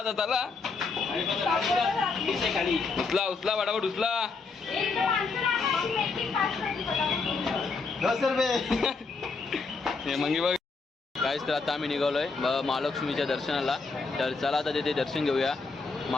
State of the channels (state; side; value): quieter; right; 4.3 dB